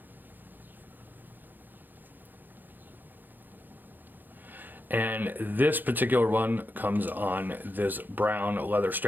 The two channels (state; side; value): late; left; 0.088 ms